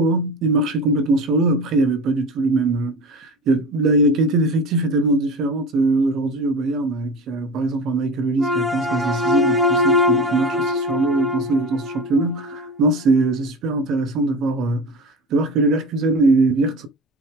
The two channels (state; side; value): normal; both; correlation 0.31